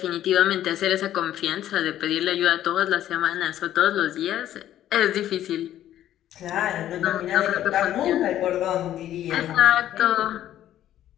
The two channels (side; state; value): right; quieter; 12.1 dB